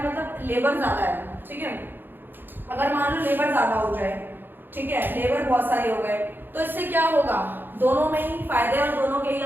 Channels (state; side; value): late; left; 0.096 ms